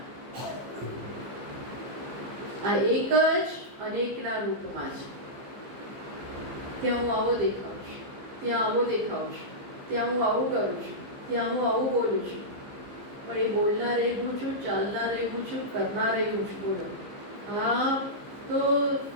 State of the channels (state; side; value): late; left; 15 ms